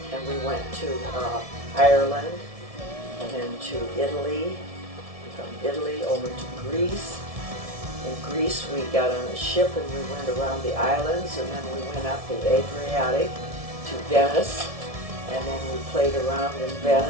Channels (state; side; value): late; left; 1.7 ms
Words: and we went to Ireland, and then to Italy, from Italy over to Greece. In Greece, we got on a ship and we went around the islands, and then we went up the Adriatic to Venice, and then we played around in